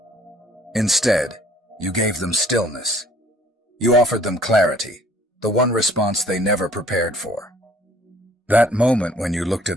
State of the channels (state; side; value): normal; both; correlation 0.57